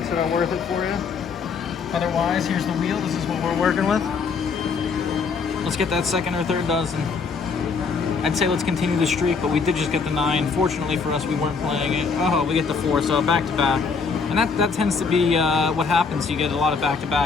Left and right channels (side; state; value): right; quieter; 5.1 dB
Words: that are worth it for you. Otherwise, here's the wheel. This is what we're working with. Let's get that second or third dozen. I'd say let's continue the streak, but we did just get the 9. Fortunately for us, we weren't playing it. Oh, we get the 4, so back to back. And that tends to be what happens. You get a lot of